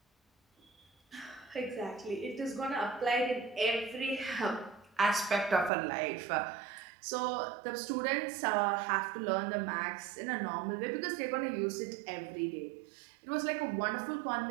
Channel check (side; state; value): left; drops out; at 5.7 s